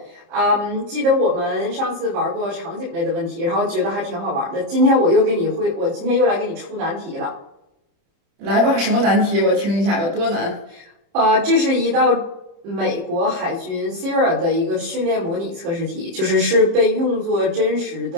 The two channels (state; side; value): late; left; 30 ms